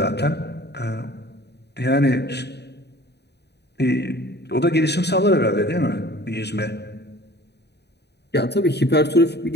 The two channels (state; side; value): late; right; 0.49 ms